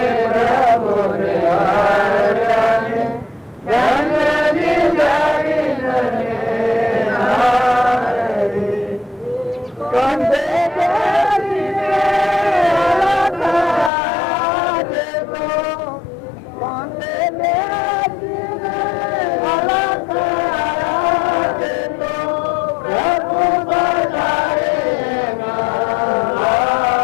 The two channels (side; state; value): right; drops out; at 13.9 s